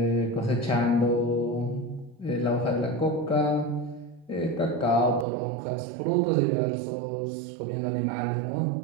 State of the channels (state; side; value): drops out; left; at 5.2 s